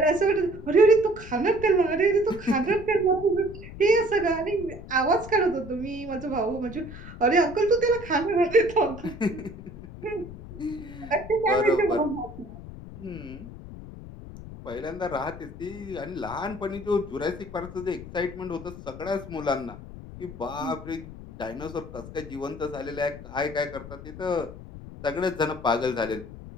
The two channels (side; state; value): left; noise; rumble, 13 dB below the sound